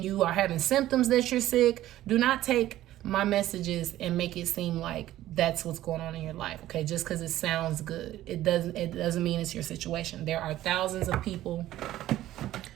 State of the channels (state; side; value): quieter; left; 14.2 dB